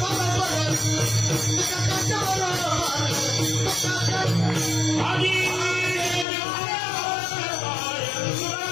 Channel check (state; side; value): drops out; right; at 6.2 s